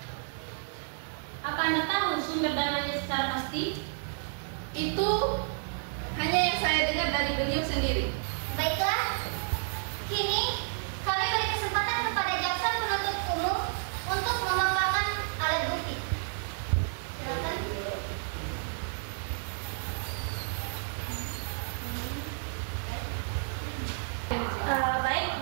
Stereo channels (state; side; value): silent; left; digital silence